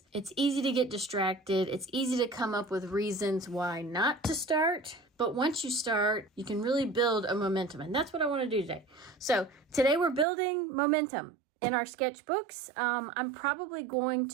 it's easy to get distracted. It's easy to come up with reasons why not to start. But once you start, you can really build a momentum. And that's what I want to do today. So today we're building momentum in our sketchbooks. I'm probably going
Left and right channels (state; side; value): drops out; left; at 10.2 s